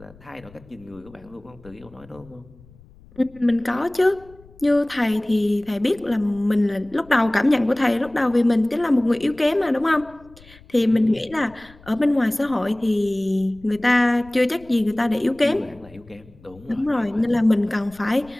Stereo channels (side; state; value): left; noise; rumble, 25 dB below the sound